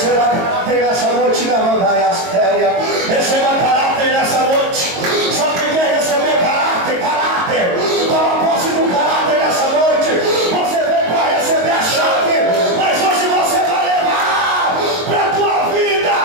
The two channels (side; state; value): left; late; 22 ms